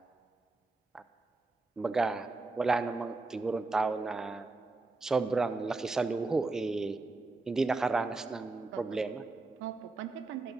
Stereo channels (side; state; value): left; quieter; 3.5 dB